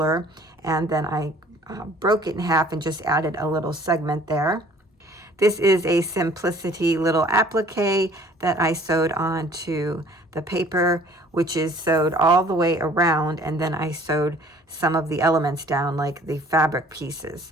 and then I broke it in half and just added a little segment there. This is a Simplicity little applique that I sewed onto the paper, which is sewed all the way around, and then I sewed some of the elements down, like the fabric pieces.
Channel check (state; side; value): normal; both; correlation 0.53